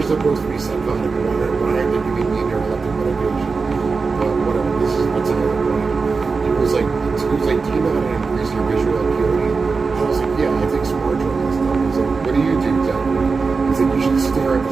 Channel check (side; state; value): left; quieter; 4.5 dB